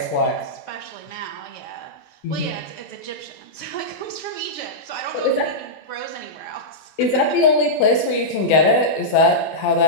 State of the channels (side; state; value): right; late; 20 ms